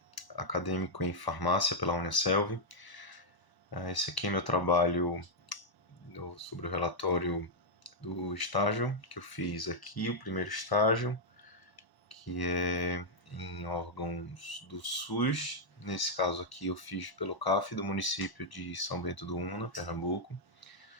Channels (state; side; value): late; right; 1.0 ms